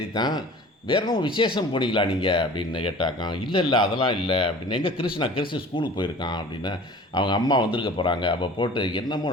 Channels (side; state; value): both; normal; correlation 0.43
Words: தான், வேறு என்ன விசேஷம் போனீங்களா நீங்கள் அப்படின்னு கேட்டாக்கான். இல்லை அதெல்லாம் இல்லை அப்படின்னு. எங்கே கிறிஸ் ஸ்கூலுக்கு போயிருக்கான் அப்படின்னு. அவங்க அம்மா வந்திருக்க போகிறாங்க. அப்போ போட்டு